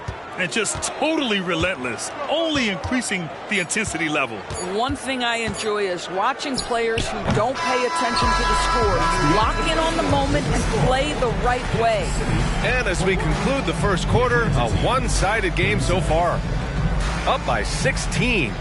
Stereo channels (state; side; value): identical; both; correlation 1.00